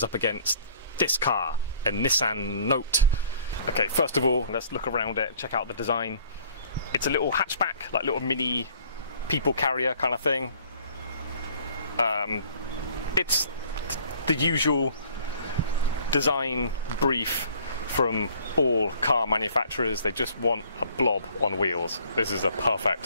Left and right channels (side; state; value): both; inverted; correlation -0.55